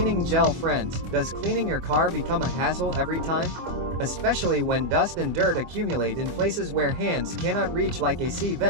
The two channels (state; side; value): late; left; 24 ms